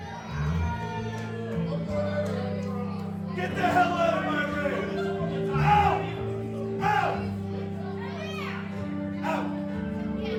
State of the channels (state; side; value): identical; both; correlation 1.00